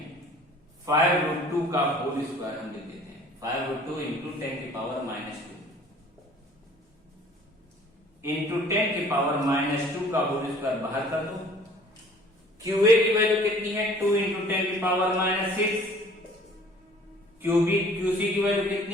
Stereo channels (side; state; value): both; normal; correlation 0.52